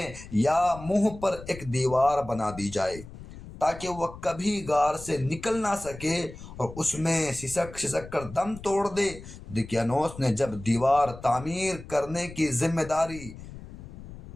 یا منہ پر ایک دیوار بنا دی جائے تاکہ وہ کبھی غار سے نکل نہ سکے اور اس میں سسک سسک کر دم توڑ دے۔ دقیانوس نے جب دیوار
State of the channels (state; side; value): noise; left; rumble, 15 dB below the sound